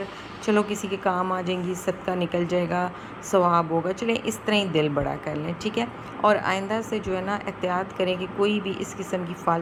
چلو کسی کے کام آ جائیں گی، صدقہ نکل جائے گا، ثواب ہوگا. چلیں اس طرح ہی دل بڑا کر لیں، ٹھیک ہے. اور آئندہ سے جو ہے نا احتیاط کریں کہ کوئی بھی اس قسم کی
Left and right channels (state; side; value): identical; both; correlation 1.00